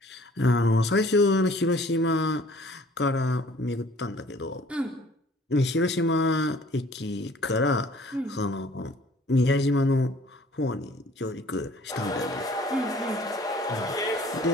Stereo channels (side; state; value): both; normal; correlation 0.54